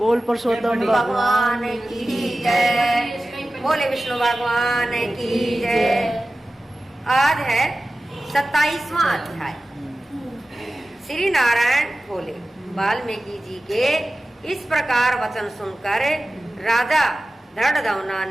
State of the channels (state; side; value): normal; both; correlation 0.95